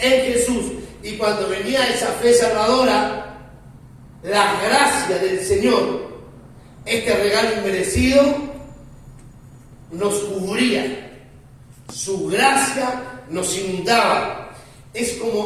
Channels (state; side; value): identical; both; correlation 1.00